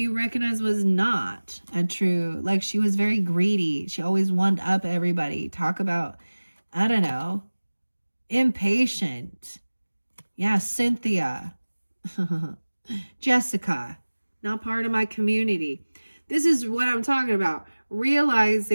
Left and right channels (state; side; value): inverted; both; correlation -1.00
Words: recognize was not a true, like she was very greedy. She always wanted up everybody. Talk about, I don't know, impatient. Yeah, Cynthia. Jessica, not part of my community. This is what I'm talking about.